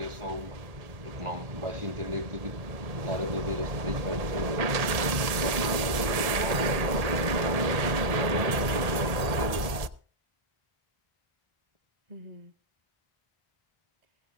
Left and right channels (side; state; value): left; late; 1.7 ms